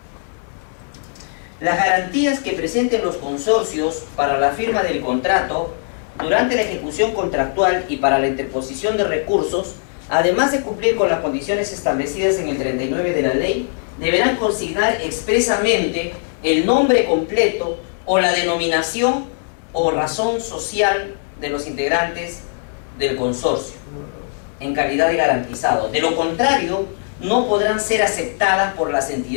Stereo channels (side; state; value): right; silent; digital silence